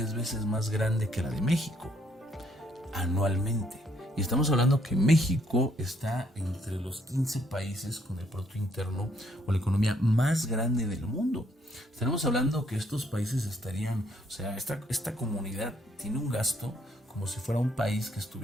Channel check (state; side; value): normal; both; correlation 0.69